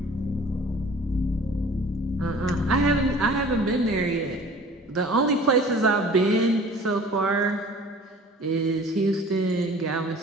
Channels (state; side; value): normal; both; correlation 0.47